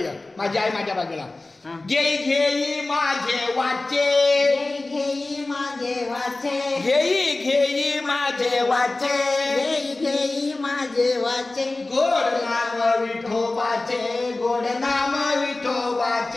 माझी आई माझ्या बाजूला. घेई घेई माझे वाचे, घेई माझे वाचे, घेई घेई माझे वाचे, घेई घेई माझे वाचे. गोड नाम विठोबाचे, गोड नाम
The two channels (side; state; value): right; quieter; 3.1 dB